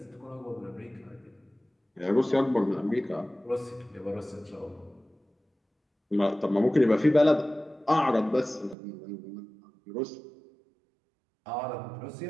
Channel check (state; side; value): drops out; left; at 8.8 s